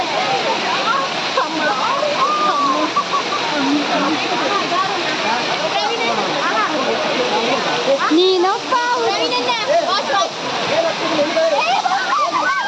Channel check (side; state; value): both; identical; correlation 1.00